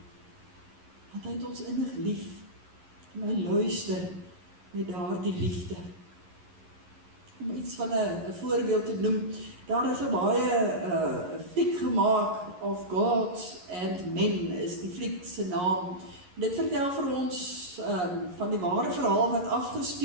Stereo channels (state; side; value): late; left; 11 ms